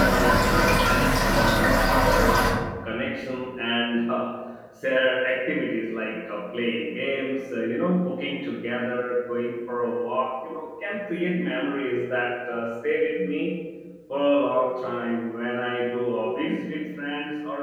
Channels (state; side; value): identical; both; correlation 1.00